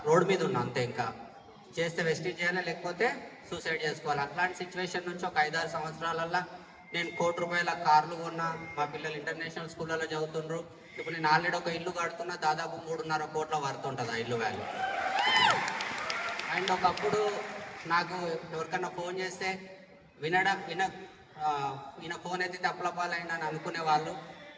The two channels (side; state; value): both; identical; correlation 1.00